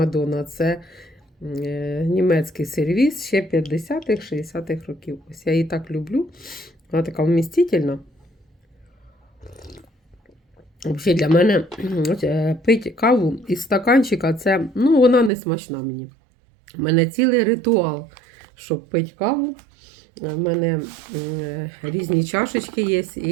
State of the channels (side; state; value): left; drops out; at 15.3 s